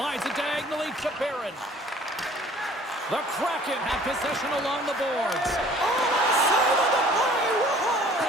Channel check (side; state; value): both; normal; correlation 0.52